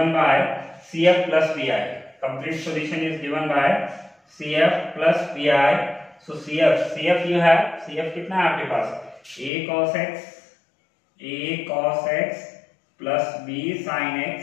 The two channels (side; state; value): right; drops out; at 9.5 s